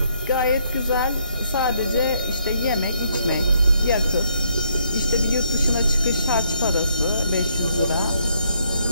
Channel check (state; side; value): inverted; both; correlation -0.72